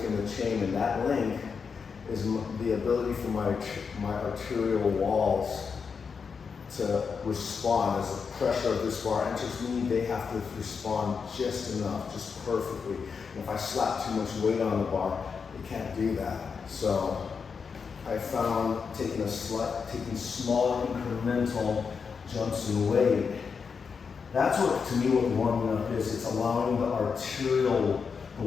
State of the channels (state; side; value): quieter; right; 5.8 dB